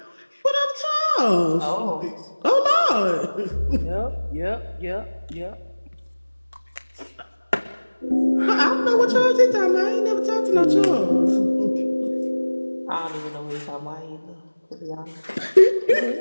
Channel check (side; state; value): both; inverted; correlation -1.00